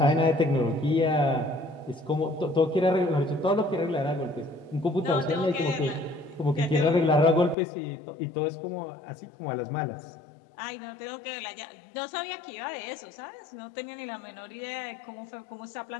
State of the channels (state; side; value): drops out; right; at 7.6 s